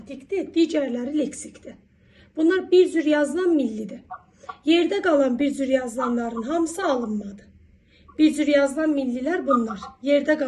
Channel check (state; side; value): identical; both; correlation 1.00